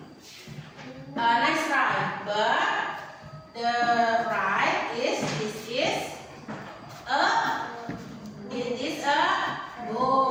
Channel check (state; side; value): identical; both; correlation 1.00